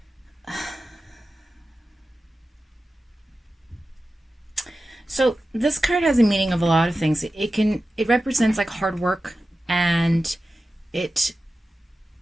so this card has a meaning of a lot of things. It represents like hard work, and it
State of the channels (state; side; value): normal; both; correlation 0.94